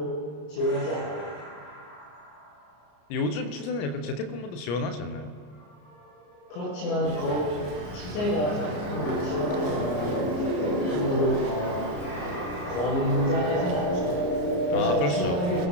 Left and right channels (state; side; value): late; right; 34 ms